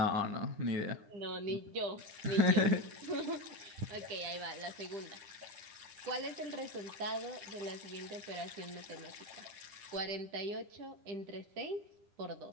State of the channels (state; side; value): late; left; 9.9 ms